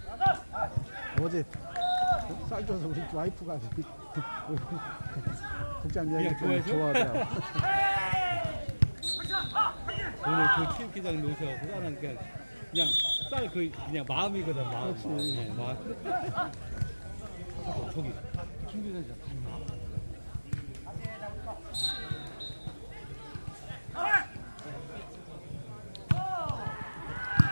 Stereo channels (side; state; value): both; inverted; correlation -1.00